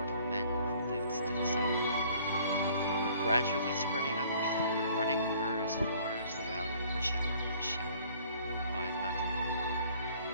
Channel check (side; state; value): both; inverted; correlation -0.56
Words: men who lived to the south. They were gradually spreading up the running river as far as the valley overshadowed by the mountain.